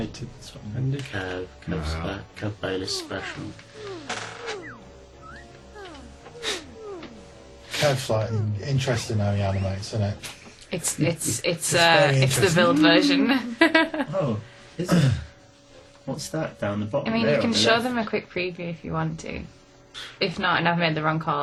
Kev Bayless special. Kev's like interesting how he animates, isn't it? It's very the build version. Oh, is it? What's that down the bottom? I mean, there you can on the show left? them a quick preview if you want to. If not, and I've made the wrong call,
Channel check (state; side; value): identical; both; correlation 1.00